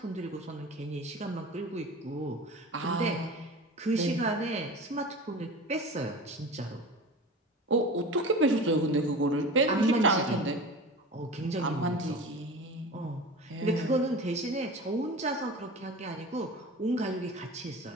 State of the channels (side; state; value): both; normal; correlation 0.34